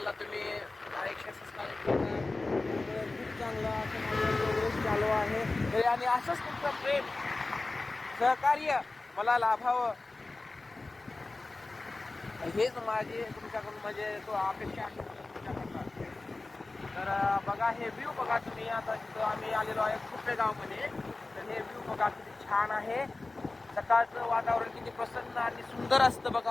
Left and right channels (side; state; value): right; quieter; 3.3 dB